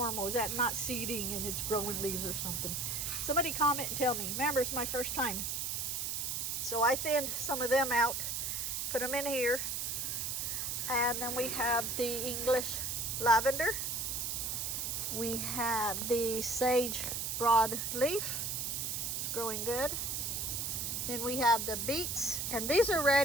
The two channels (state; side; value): noise; right; hiss, 1 dB below the sound